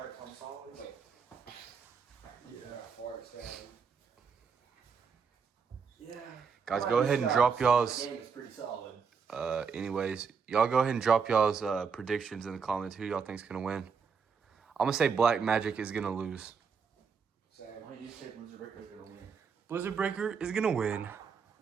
comes solid? Like, yeah, hard sound. Yeah. Guys, go ahead and drop y'all's. The game is pretty solid. Anyways, y'all go ahead and drop y'all's predictions in the comments. Who y'all think's gonna win? I'm gonna say Black Magic is gonna lose. Same. Why do you say Blizzard Breaker is gonna win? Blizzard Breaker is gonna win.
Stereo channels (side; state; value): left; quieter; 5.9 dB